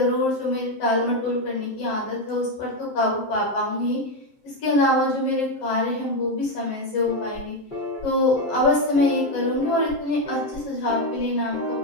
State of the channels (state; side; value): late; right; 7.6 ms